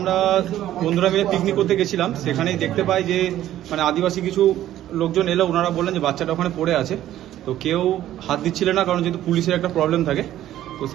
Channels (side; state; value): left; quieter; 12.9 dB